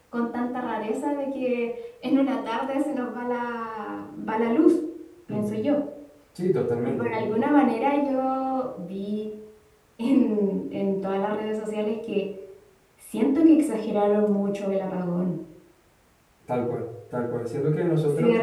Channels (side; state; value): both; identical; correlation 1.00